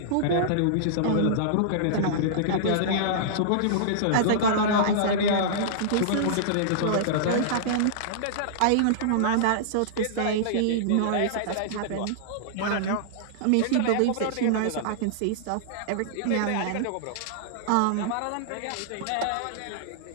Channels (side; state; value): both; different; correlation -0.02